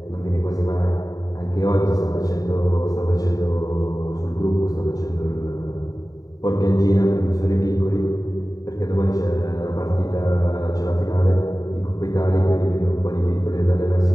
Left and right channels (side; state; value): right; late; 0.18 ms